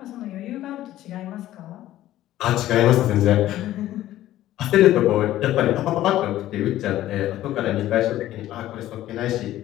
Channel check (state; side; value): quieter; right; 14.0 dB